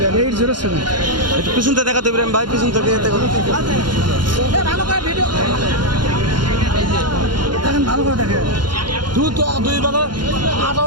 807 একটু পিছন থেকে দেখাতে ইব্রাহিম ভাই পিছন থেকে দেখো ভালো করে ভিডিও দেখেন ভালো করে দেখেন দুধ তো দুই বেলা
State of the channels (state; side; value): late; left; 0.71 ms